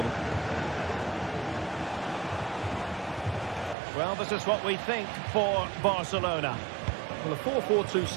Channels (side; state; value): left; drops out; at 3.8 s